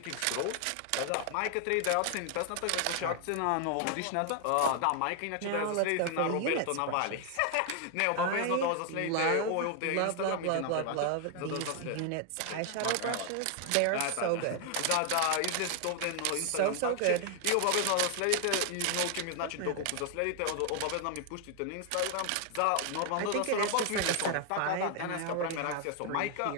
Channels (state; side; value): different; both; correlation 0.00